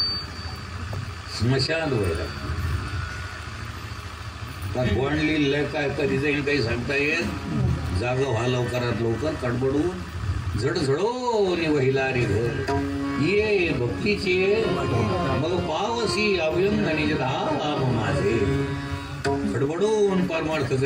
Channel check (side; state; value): both; identical; correlation 1.00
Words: स्मशान वैराग्य. कोण लिहिलंय काय, कधी जाईल काही सांगता येत. जागा व्हा लवकरात लवकर कडबडून. झडझडोनी वहिला रे घर ये भक्तीचे मग पावसी अभ्यंगनी धाम माझे. खडबडून परमार्थ